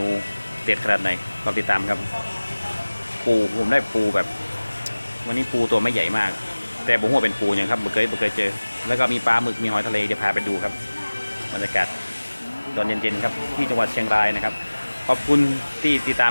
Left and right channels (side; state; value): both; inverted; correlation -1.00